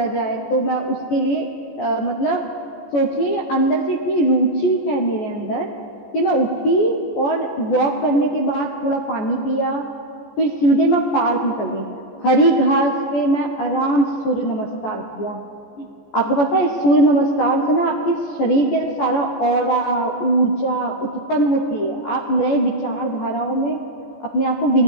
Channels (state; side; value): late; right; 14 ms